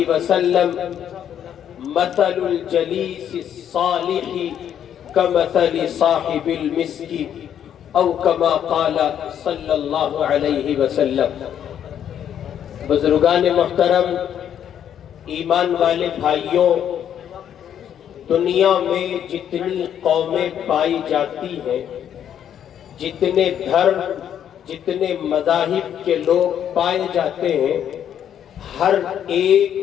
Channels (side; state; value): right; quieter; 9.6 dB